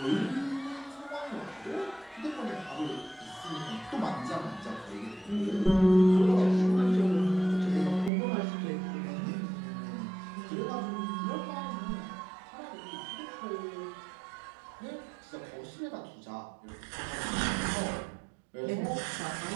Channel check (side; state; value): left; drops out; at 8.1 s